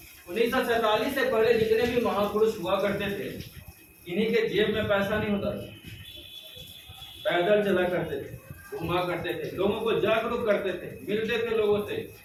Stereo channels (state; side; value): identical; both; correlation 1.00